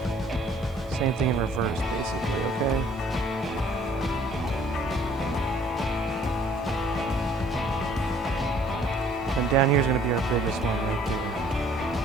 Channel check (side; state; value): both; normal; correlation 0.58